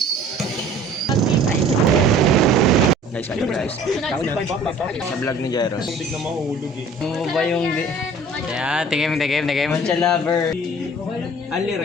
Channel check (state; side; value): normal; both; correlation 0.49